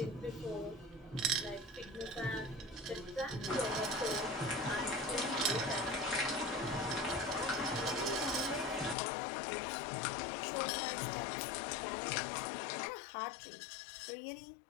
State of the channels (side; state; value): right; drops out; at 9.0 s